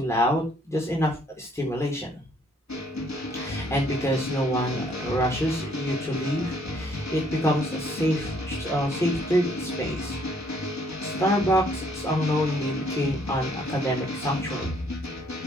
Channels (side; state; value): both; normal; correlation 0.65